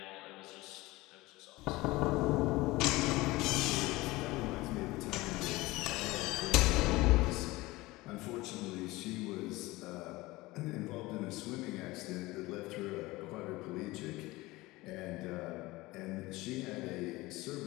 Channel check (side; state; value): right; quieter; 20.3 dB